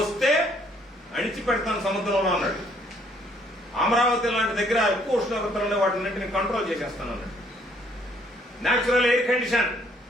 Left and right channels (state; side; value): normal; both; correlation 0.65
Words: వస్తే అణిచి పెడతాను సముద్రంలో అన్నాడు. అమరావతి లాంటి దగ్గర ఎక్కువ ఉష్ణోగ్రతలు వాటిన్నింటిని కంట్రోల్ చేసేస్తానన్నాడు. Natural air condition.